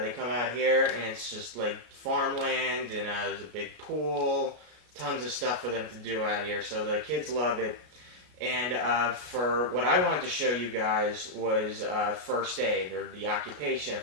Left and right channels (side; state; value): left; late; 33 ms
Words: they come out here, and it's just like farmland, and there's a big pool, tons of stuff for them to do out here, so the kids love it. And for what I wanted to show you guys was first aid, or the occupation of